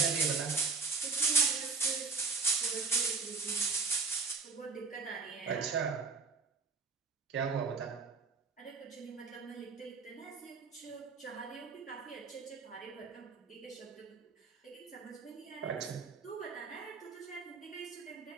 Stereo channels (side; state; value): left; quieter; 4.6 dB